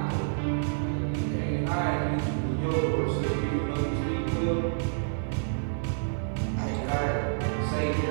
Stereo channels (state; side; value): silent; left; digital silence